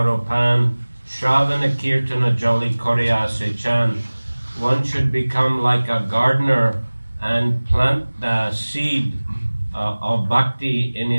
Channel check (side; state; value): both; inverted; correlation -1.00